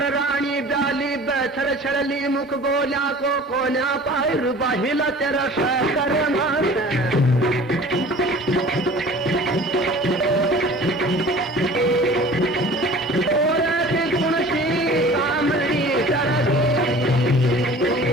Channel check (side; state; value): both; normal; correlation 0.44